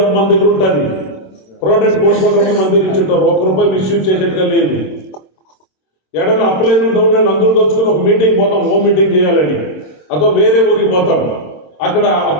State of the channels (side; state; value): right; late; 26 ms